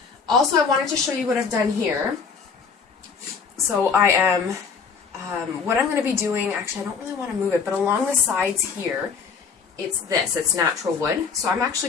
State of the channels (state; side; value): quieter; right; 5.7 dB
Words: Also, I wanted to show you what I've done here. So I am, what I'm going to be doing, actually I don't really want to move it, but along the sides here, it's natural wood. So I'm actually